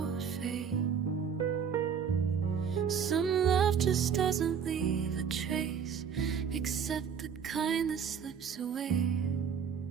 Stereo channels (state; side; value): quieter; left; 7.2 dB